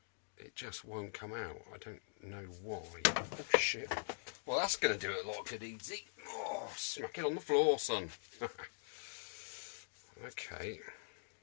It just won't come out. I don't know why. Oh shit. Well, that's going to do it a lot of good easy. Oh, smack it on the floor, son. Okay.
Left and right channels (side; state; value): right; silent; digital silence